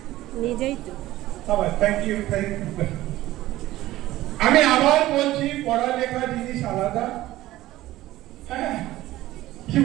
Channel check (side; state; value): left; quieter; 16.1 dB